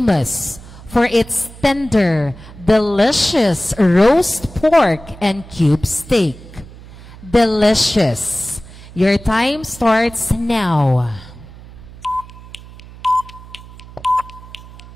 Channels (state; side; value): noise; right; hum, 18 dB below the sound